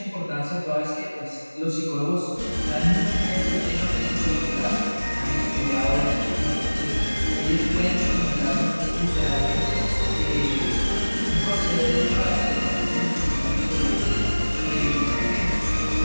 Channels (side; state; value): both; inverted; correlation -1.00